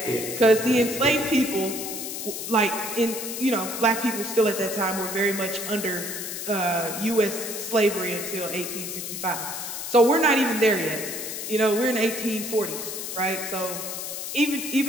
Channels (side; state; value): left; noise; hiss, 6 dB below the sound